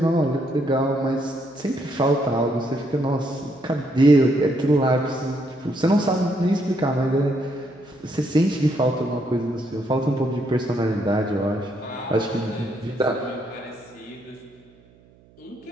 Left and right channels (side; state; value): right; noise; hum, 28 dB below the sound